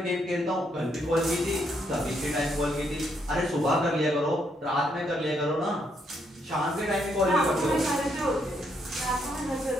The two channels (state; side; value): normal; both; correlation 0.74